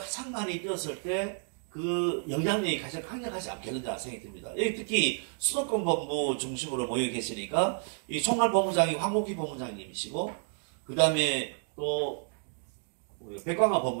많이 뛰었을 때 그 영향력이 가장 강력하지 않겠는가 생각이 듭니다. 여기 특히 수도권 본부 중심으로 모여 계시니까 이 총괄본부장이 황복희 본부장님이시고, 그 다음에 또 백광화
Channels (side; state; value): left; silent; 57 dB below the other